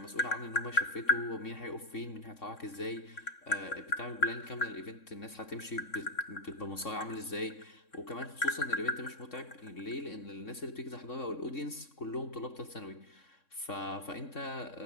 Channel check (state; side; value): late; right; 3.6 ms